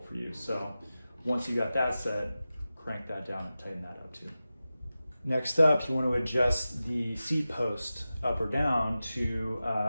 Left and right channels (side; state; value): both; inverted; correlation -0.94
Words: you. So once you got that set, crank that down and tighten that up too. Next up, you want to adjust the seat post up or down to